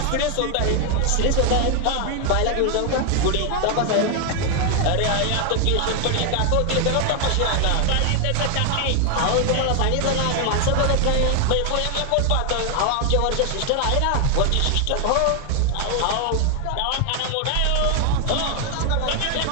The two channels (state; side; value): different; both; correlation 0.01